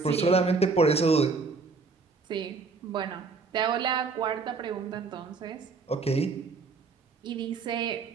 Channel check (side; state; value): left; quieter; 4.5 dB